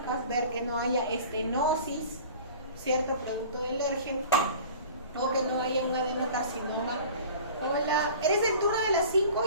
ver que no haya estenosis, ¿cierto? Producto del ERGE, o que no haya un adenocarcinoma. Hola, ¿eres del turno de las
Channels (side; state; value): both; inverted; correlation -0.43